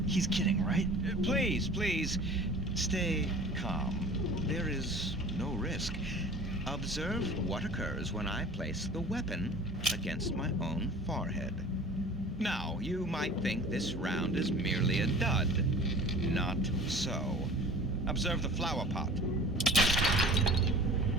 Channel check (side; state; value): both; normal; correlation 0.43